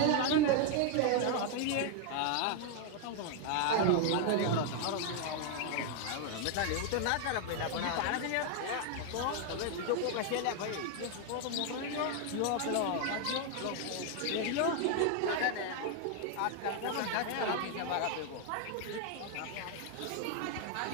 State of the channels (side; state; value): both; different; correlation 0.00